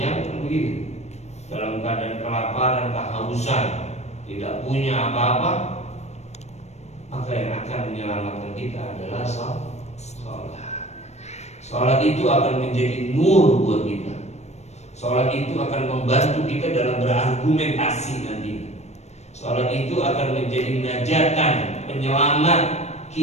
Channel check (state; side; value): late; right; 0.32 ms